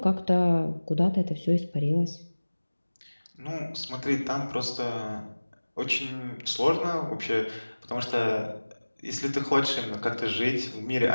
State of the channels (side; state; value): both; inverted; correlation -1.00